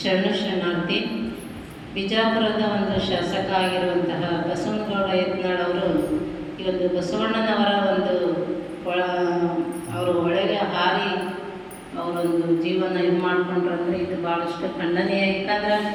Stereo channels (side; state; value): both; identical; correlation 1.00